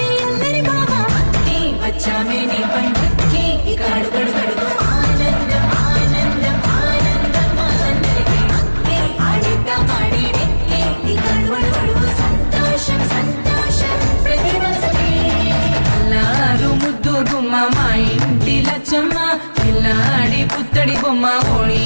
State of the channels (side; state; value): both; inverted; correlation -1.00